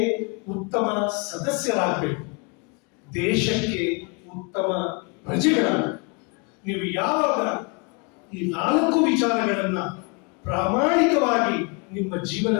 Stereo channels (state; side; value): quieter; right; 31.9 dB